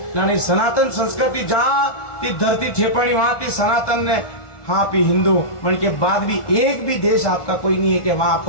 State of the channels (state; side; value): late; right; 1.4 ms